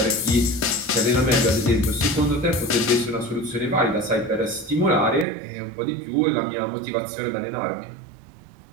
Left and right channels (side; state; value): left; drops out; at 5.2 s